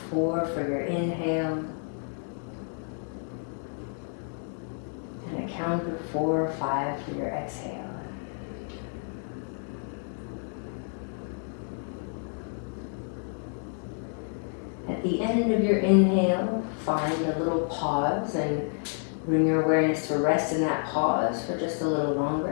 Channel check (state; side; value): silent; right; 58 dB below the other